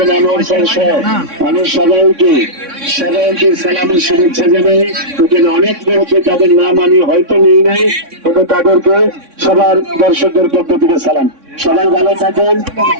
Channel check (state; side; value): late; left; 3.6 ms